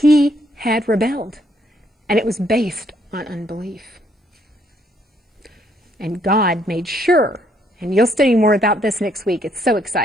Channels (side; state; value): both; normal; correlation 0.69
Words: had rebelled, and it was based on unbelief. And God made sure, and you'll study more about this next week, it's so